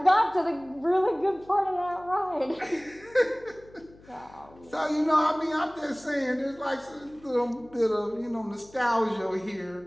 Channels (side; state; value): left; noise; hum, 25 dB below the sound